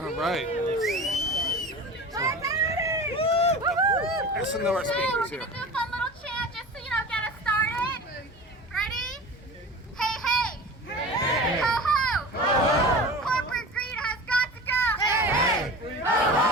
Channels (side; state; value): both; normal; correlation 0.35